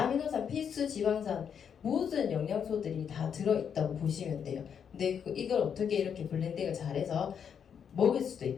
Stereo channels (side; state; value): right; quieter; 7.6 dB